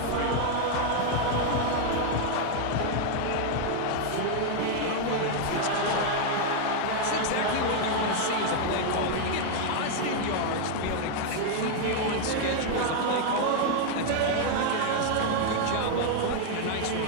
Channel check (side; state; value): both; different; correlation 0.00